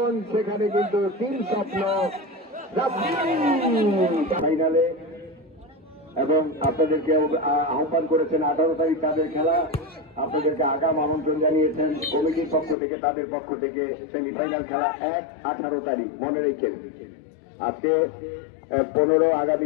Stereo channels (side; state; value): right; drops out; at 12.8 s